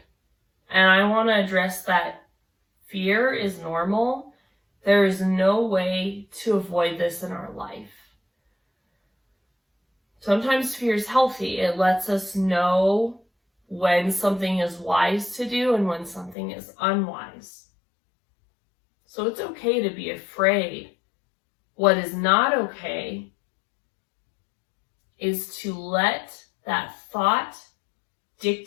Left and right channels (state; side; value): drops out; right; at 16.4 s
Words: And I want to address that fear is normal. There is no way to avoid this in our life. Sometimes fear is healthy. It lets us know when something is wise to do and when something is unwise. So it's okay to be afraid. What is not okay is to let that thought